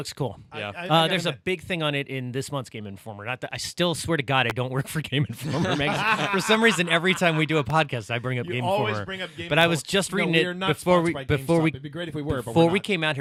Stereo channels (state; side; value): identical; both; correlation 1.00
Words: cool. Yeah. There's a big thing on it in this month's Game Informer. Not that I still swear to God I don't work for Game Informer magazine. For some reason, every time we do a podcast, I bring up You Game always Informer. bring up Game but I was Informer. just No, reading we are it not before we sponsored by before GameStop. we It'd be great if we were, but before we're we not. came out